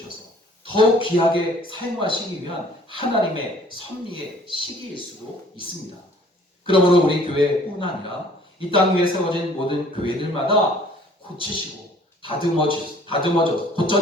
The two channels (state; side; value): normal; both; correlation 0.55